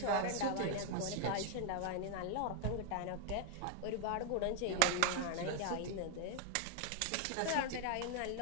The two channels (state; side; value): different; both; correlation 0.00